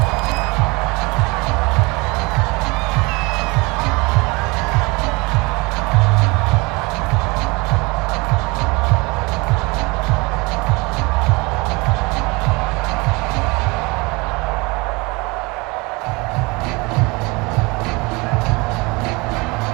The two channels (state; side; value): quieter; left; 26.1 dB